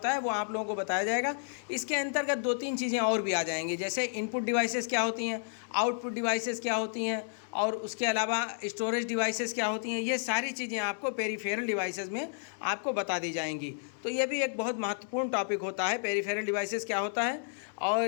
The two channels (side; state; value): right; silent; 57 dB below the other